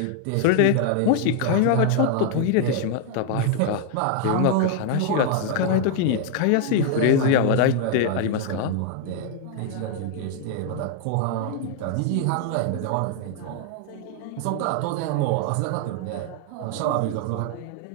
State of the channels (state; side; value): different; both; correlation 0.00